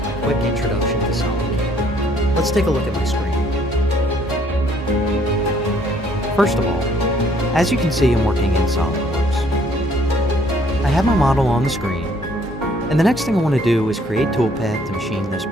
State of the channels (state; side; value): normal; both; correlation 0.63